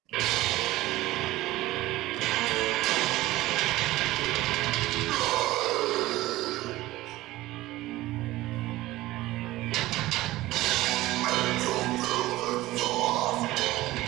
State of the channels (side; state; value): left; quieter; 17.4 dB